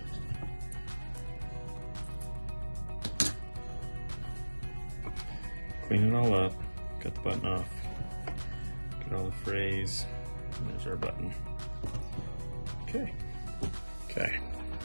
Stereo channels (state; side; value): inverted; both; correlation -1.00